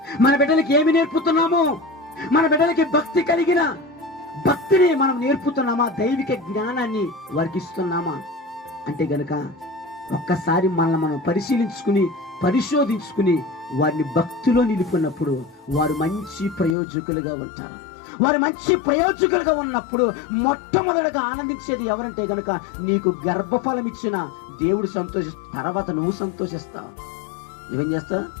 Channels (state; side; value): drops out; right; at 16.8 s